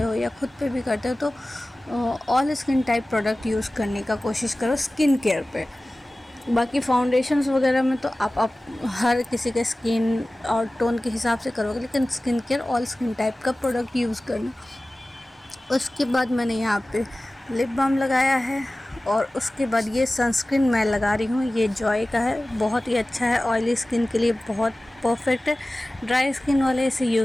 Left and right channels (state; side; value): normal; both; correlation 0.97